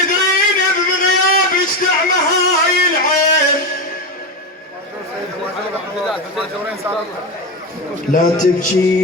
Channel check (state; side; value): normal; both; correlation 0.15